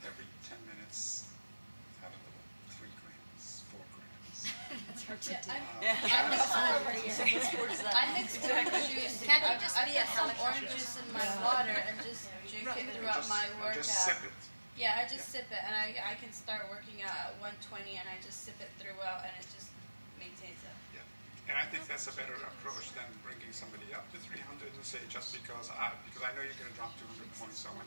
every 10 minutes, have a little 3 grams, 4 grams. That's hard to do. I mix orange juice. Can't I just be some orange juice in my water and just drink it throughout my workout? Just sip it. Yeah, I just sip it, and I can start working out at 120, and I just sip it throughout, and it just maintains it. Yeah, and I think that's a better approach than bringing somebody up to 300 and say just because I know you're going to drop 200 points, so I want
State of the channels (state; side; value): inverted; both; correlation -1.00